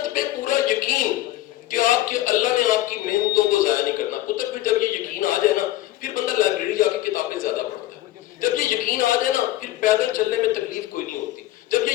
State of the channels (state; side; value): quieter; right; 15.3 dB